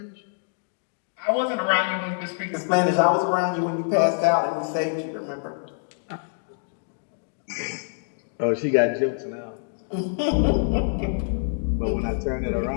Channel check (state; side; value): silent; right; digital silence